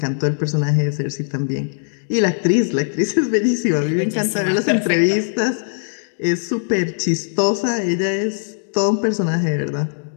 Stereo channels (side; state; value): right; silent; digital silence